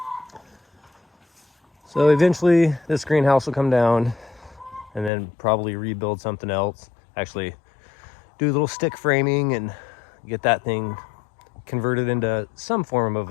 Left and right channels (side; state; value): right; drops out; at 5.1 s